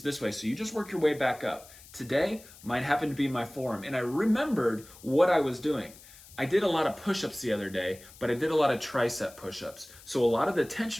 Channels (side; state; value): left; noise; hiss, 21 dB below the sound